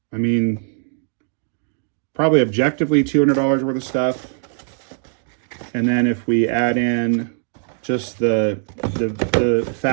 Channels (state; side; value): silent; left; digital silence